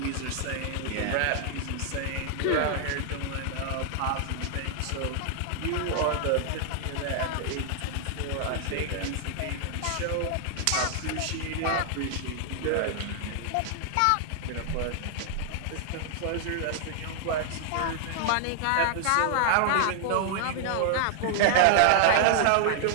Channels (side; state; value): both; different; correlation 0.00